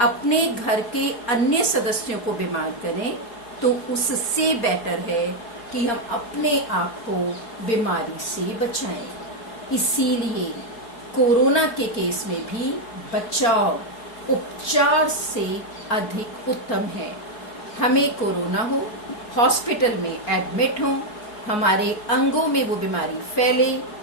अपने घर के अन्य सदस्यों को बीमार करें? तो उससे बेटर है कि हम अपने आप को बीमारी से बचाएं। इसीलिए कोरोना के केस में भी बचाव उपचार से अधिक उत्तम है। हमें कोरोना हो, हॉस्पिटल में एडमिट हो, हमारे अंगों में वो बीमारी फैले,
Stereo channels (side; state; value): right; late; 4.7 ms